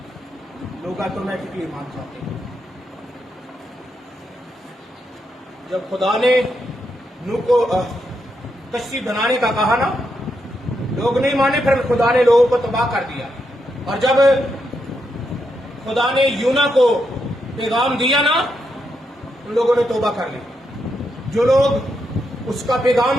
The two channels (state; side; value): normal; both; correlation 0.82